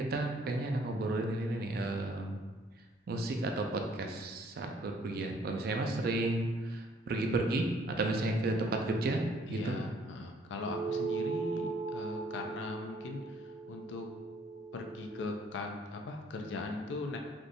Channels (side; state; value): both; normal; correlation 0.62